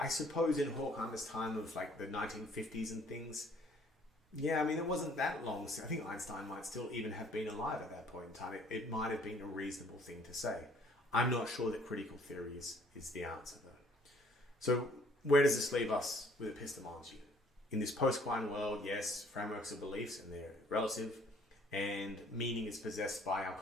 suppose in Horkheimer's time of like the 1950s and things, yeah, I mean, it wasn't that long. So I think Einstein might still even have been alive at that point in time. It might have been a reasonable thing to say. I'm not sure that critical theory is the answer, though. So where does this leave us with epistemology? In this post-Quine world, yes, frameworks of beliefs, and they're relative, and meaning is possessed by our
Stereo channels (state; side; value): normal; both; correlation 0.59